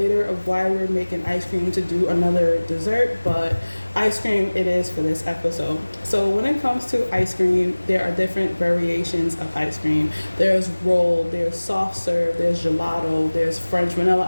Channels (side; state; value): both; inverted; correlation -1.00